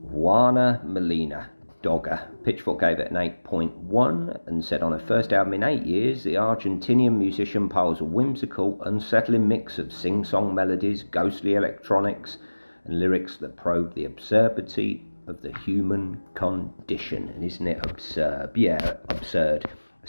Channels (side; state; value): both; inverted; correlation -1.00